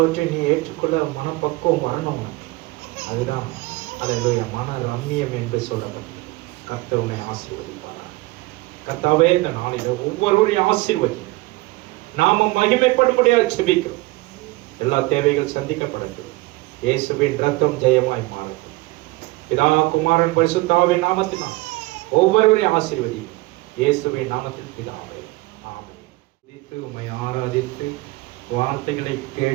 நீ ஏற்றுக்கொள்ள மனப்பக்குவம் வரணும். அதுதான் அல்லேலூயா மன ரம்மியம் என்று சொல்லப்பட்டது. கர்த்தர் உன்னை ஆசீர்வதிப்பார். கர்த்தாவே, இந்த நாளில் ஒவ்வொருவரையும் ஆசீர்வதி. நாம மகிமைப்படும்படியாக ஜெபிக்கிறோம். எல்லா தேவைகள் சந்திக்கப்படட்டும். இயேசுவின் ரத்தம் ஜெயமாய் மாறட்டும். பிதா, குமாரன், பரிசுத்த ஆவியின் நாமத்தினால் ஒவ்வொருவரையும் ஆசீர்வதி. இயேசுவின் நாமத்தில் பிதாவே, ஆமென். உம்மை ஆராதித்து வார்த்தைகளை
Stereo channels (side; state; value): left; quieter; 21.3 dB